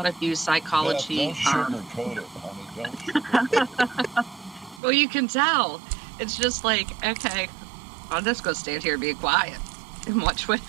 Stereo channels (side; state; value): left; drops out; at 4.8 s